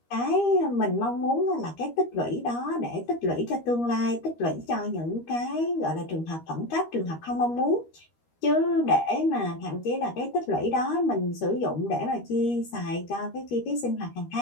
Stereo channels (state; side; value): late; right; 13 ms